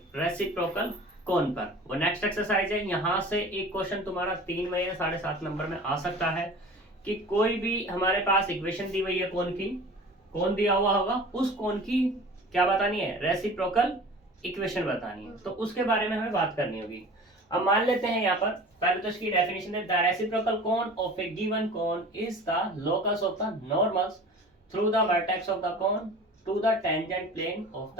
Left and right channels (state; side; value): normal; both; correlation 0.41